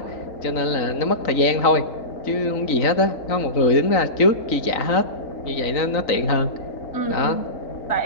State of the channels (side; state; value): right; late; 3.9 ms